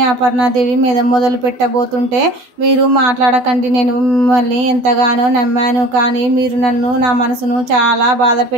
అపర్ణాదేవి మీద మొదలు పెట్టబోతుంటే, మీరు మాట్లాడకండి, నేను మిమ్మల్ని ఎంతగానో నమ్మాను, కానీ మీరు నన్ను నా మనసును చాలా బాధ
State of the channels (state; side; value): late; left; 12 ms